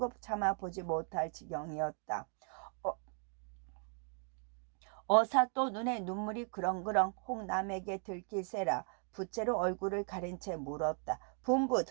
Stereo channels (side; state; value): left; quieter; 39.1 dB